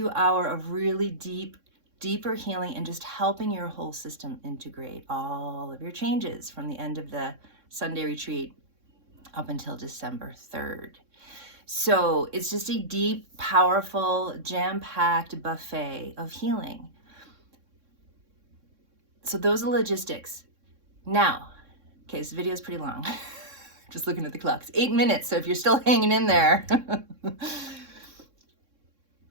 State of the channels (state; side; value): late; left; 3.6 ms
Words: of really deeper healing and just helping your whole system integrate all of your changes from the end of the Sunday retreat up until December 3rd. So it's just a deep, powerful, jam-packed buffet of healing. So those are logistics. Now, okay, this video is pretty long. Just looking at the clock. It's 8 minutes, so if you're still hanging in there.